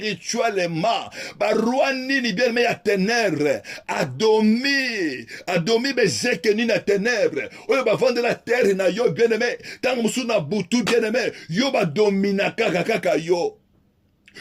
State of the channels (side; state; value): both; identical; correlation 1.00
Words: Barouani ni bien mais à ténèbres, adomi bezeke ni na ténèbres. Oyo ba vendre la terre na yo bien aimé. Tant musu na butu bien aimé, yo ba domina kaka yo.